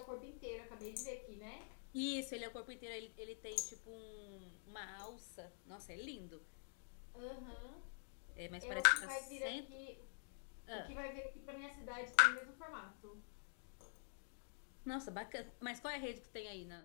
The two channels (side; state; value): right; silent; digital silence